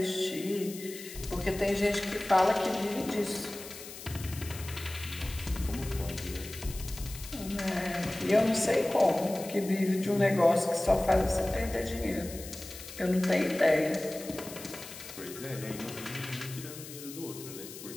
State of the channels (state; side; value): noise; left; hiss, 13 dB below the sound